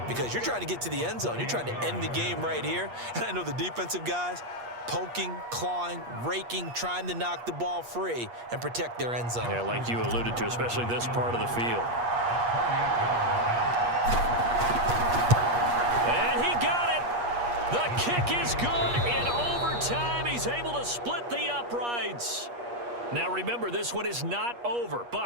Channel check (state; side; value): late; left; 8.4 ms